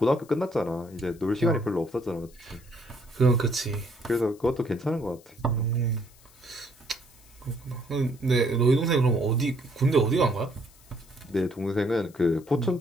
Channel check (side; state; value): left; noise; hiss, 26 dB below the sound